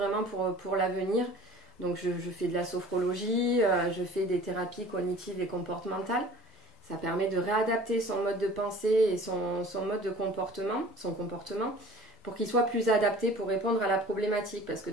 pour l'avenir. Donc je fais de la sophrologie, je fais des thérapies cognitives et comportementales. Ça permet de réadapter son mode de pensée et son mode de comportement, pour qu'il soit plus adapté pour répondre à la problématique. Parce que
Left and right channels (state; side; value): normal; both; correlation 0.46